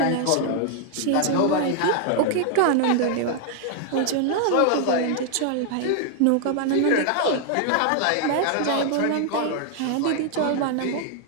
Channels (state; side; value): different; both; correlation 0.00